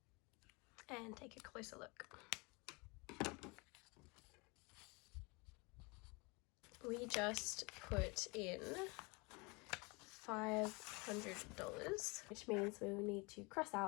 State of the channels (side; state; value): right; quieter; 28.0 dB